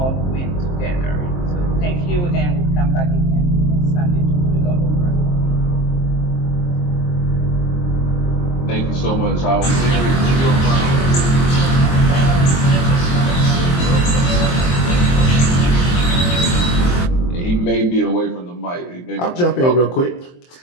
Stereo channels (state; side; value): late; right; 23 ms